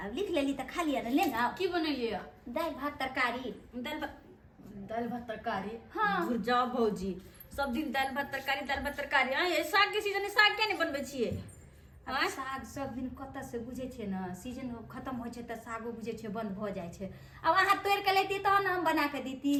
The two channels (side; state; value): both; identical; correlation 1.00